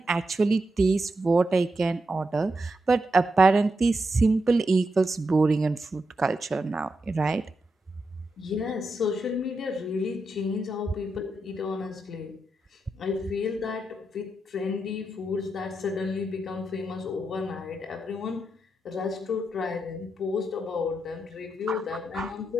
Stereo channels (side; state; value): both; normal; correlation 0.86